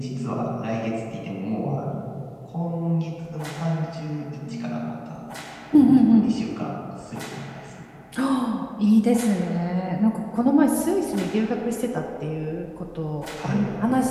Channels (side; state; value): both; identical; correlation 1.00